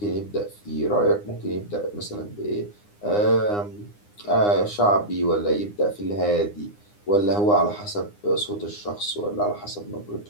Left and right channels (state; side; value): late; right; 9.8 ms